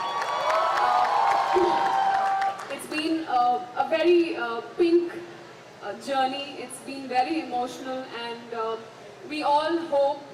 It's been a very pink journey. It's been very emotional, and we all hope,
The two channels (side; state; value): both; identical; correlation 1.00